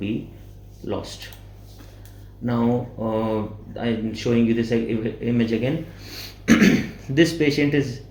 lost. Now I'm showing you this image again. This patient is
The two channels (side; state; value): both; identical; correlation 1.00